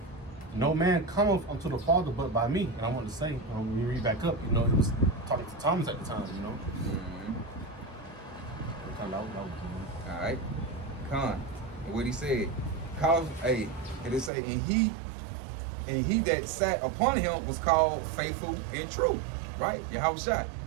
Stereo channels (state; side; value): drops out; left; at 14.3 s